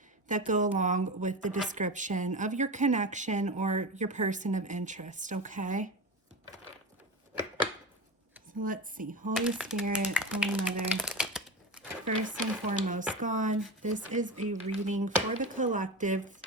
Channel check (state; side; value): normal; both; correlation 0.24